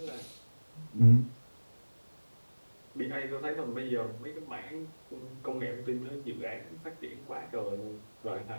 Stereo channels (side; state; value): both; inverted; correlation -1.00